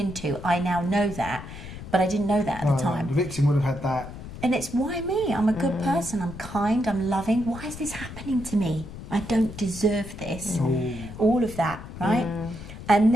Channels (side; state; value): left; noise; rumble, 12 dB below the sound